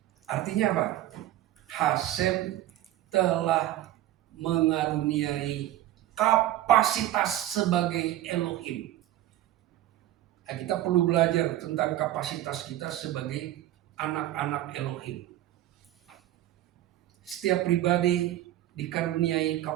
Artinya apa? Hashem telah mengaruniai kapasitas sebagai Elohim. Nah, kita perlu belajar tentang kapasitas kita sebagai anak-anak Elohim. Setiap pribadi dikaruniai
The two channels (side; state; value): left; quieter; 13.9 dB